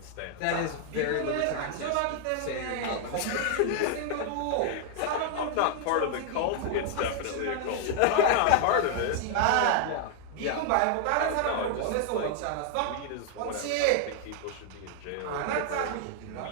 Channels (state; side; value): different; both; correlation 0.00